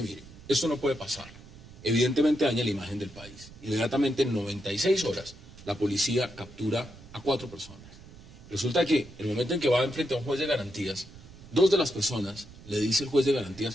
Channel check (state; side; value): noise; right; rumble, 19 dB below the sound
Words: mire, esto no puede pasar. Evidentemente daña la imagen del país. Inmediatamente en 96 horas la policía captura a 4 personas. Resulta que el momento en que va enfrente a un juez de garantías, 2 de las personas le dice el juez de